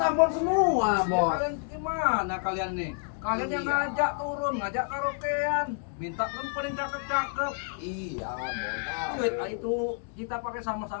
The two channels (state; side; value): silent; right; 59 dB below the other